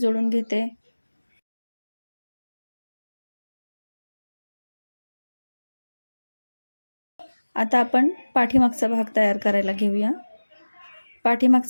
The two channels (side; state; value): both; inverted; correlation -1.00